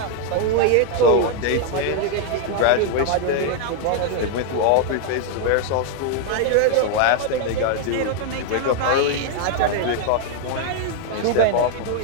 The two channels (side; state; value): both; different; correlation 0.00